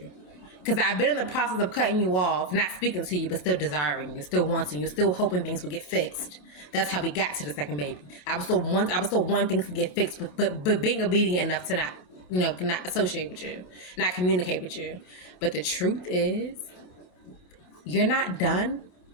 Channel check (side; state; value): right; late; 27 ms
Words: Because I've been in the process of cutting you off, not speaking to you, but still desiring you, still wanting you, still hoping things would get fixed. That's how we got to the second baby. I was still wanting things to get fixed, but being obedient enough to not associate with you, not communicate with you. But the truth is, you're not done